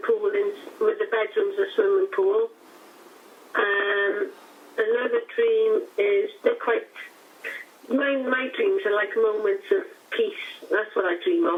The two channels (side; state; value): both; identical; correlation 1.00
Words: pool, with the bedrooms a swimming pool. Another dream is my dreams are like moments of peace. That's what I dream